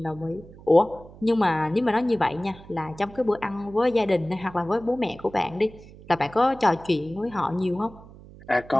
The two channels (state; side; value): noise; right; hum, 20 dB below the sound